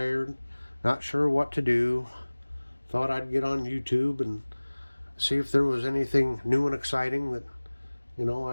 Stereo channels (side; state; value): both; inverted; correlation -1.00